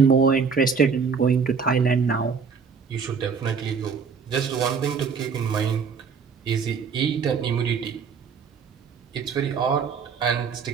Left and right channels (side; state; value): left; quieter; 5.8 dB